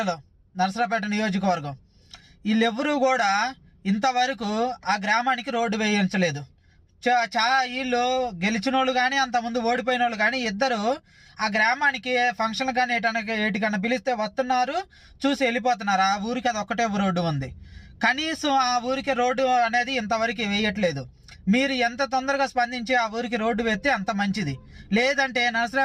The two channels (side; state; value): both; identical; correlation 1.00